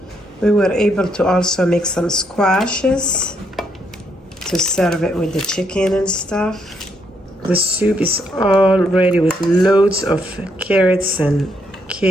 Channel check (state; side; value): normal; both; correlation 0.75